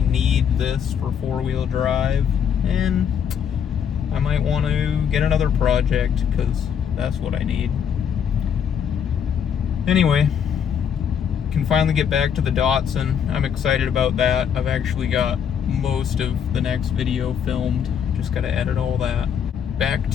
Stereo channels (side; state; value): right; quieter; 7.9 dB